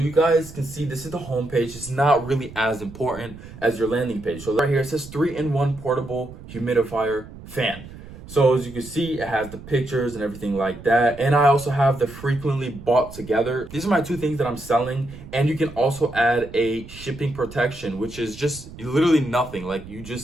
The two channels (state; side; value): noise; right; rumble, 16 dB below the sound